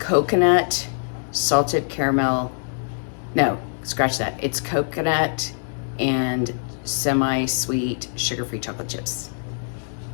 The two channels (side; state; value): right; silent; digital silence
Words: salted caramel. No, scratch that. It's coconut and semi-sweet sugar-free chocolate chips.